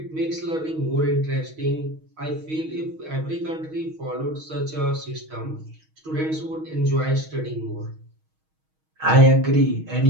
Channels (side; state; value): left; late; 6.3 ms